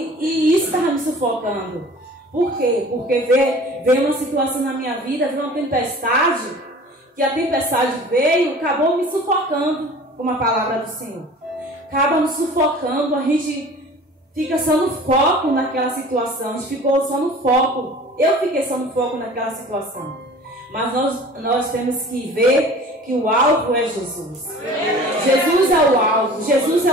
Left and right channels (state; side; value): normal; both; correlation 0.44